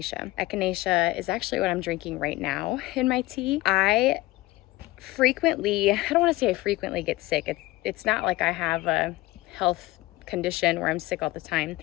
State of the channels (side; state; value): right; quieter; 18.7 dB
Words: Echinacea is actually what I'm drinking right now in my tea. I don't want to say I frequently get sick. It's not like I have a health condition where I'm sick all the time,